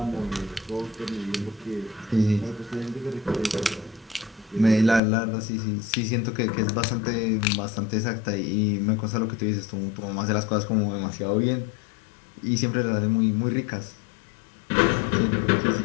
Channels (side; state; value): right; drops out; at 5.0 s